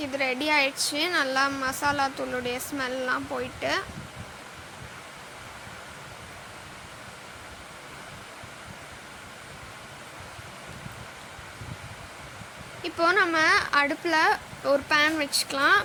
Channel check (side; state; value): both; identical; correlation 1.00